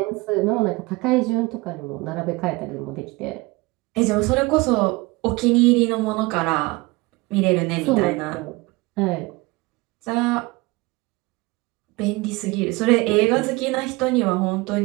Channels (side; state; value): left; quieter; 23.5 dB